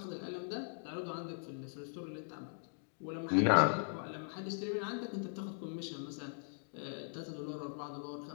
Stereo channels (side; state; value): right; silent; digital silence